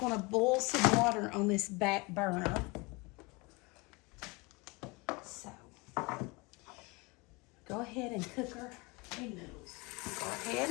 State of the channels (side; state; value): right; quieter; 26.5 dB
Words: to boil some water on this back burner. So, go ahead and cook our egg noodles. Go ahead